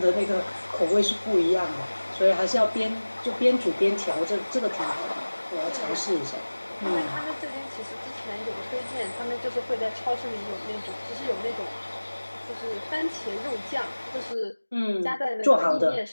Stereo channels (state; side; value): inverted; both; correlation -1.00